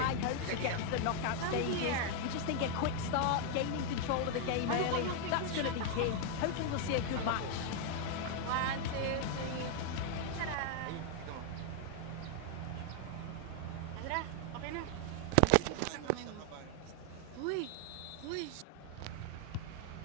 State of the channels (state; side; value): different; both; correlation 0.00